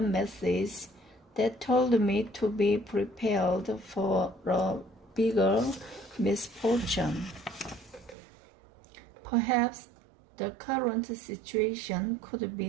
message that told me to be prepared for a bigger misfortune. Perhaps the current situation could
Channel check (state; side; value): drops out; left; at 8.2 s